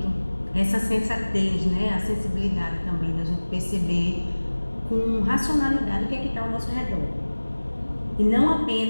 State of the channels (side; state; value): both; inverted; correlation -1.00